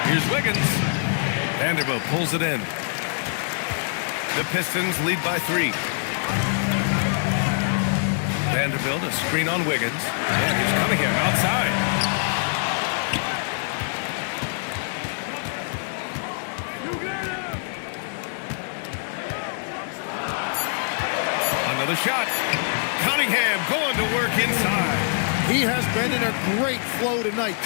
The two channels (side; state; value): right; silent; 62 dB below the other